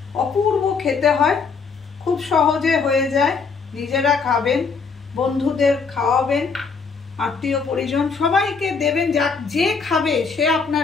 অপূর্ব খেতে হয়, খুব সহজে হয়ে যায়। নিজেরা খাবেন, বন্ধুদের খাওয়াবেন, আত্মীয় পরিজন সবাইকে দেবেন। যে খাবে সে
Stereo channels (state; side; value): quieter; right; 5.1 dB